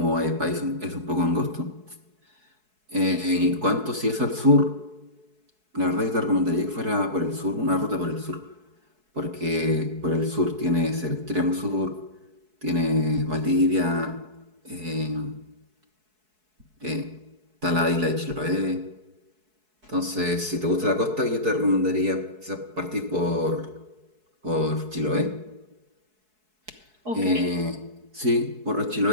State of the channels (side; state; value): left; late; 4.7 ms